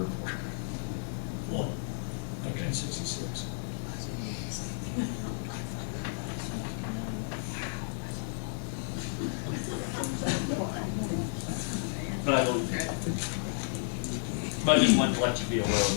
for it. One. Okay. 1966. But I don't, but I just wanted to let you be aware of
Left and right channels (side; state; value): right; silent; digital silence